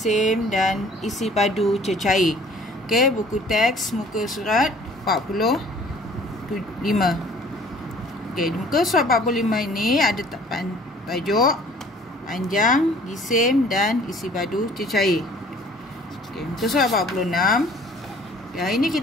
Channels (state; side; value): normal; both; correlation 0.53